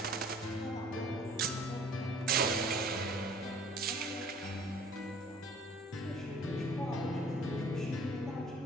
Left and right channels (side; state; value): both; normal; correlation 0.52